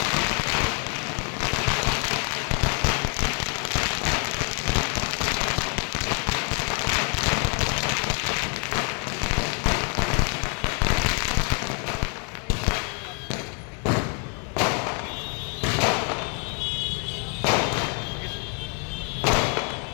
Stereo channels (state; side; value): quieter; right; 39.2 dB